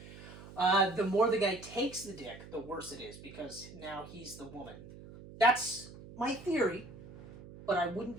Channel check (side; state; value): right; noise; hum, 16 dB below the sound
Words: The more the guy takes the dick, the worse it is, because now he's the woman. That's my theory, but I wouldn't